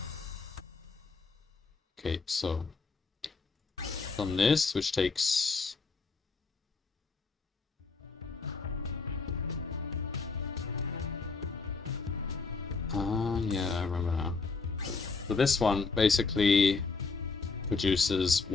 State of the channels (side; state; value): right; quieter; 4.4 dB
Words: Okay, so on this, which takes yeah, I remember now. So this one basically produces